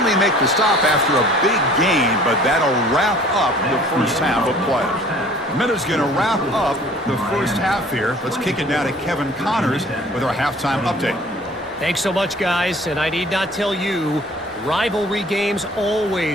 make the stop after a big gain, but that'll wrap up the first half of play. Minna's going to wrap up the first half here. Let's kick it now to Kevin Connors with our halftime update. Thanks so much, guys, and I need not tell you, rivalry games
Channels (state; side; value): normal; both; correlation 0.51